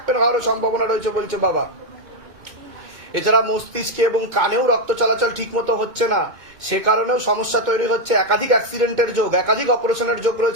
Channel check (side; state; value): left; late; 2.1 ms